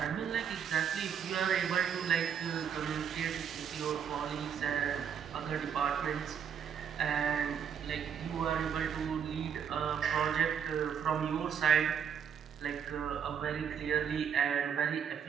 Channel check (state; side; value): quieter; left; 7.8 dB